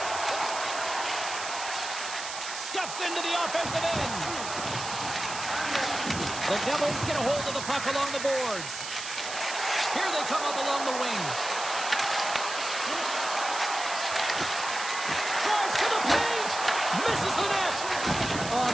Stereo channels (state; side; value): noise; right; hiss, 7 dB below the sound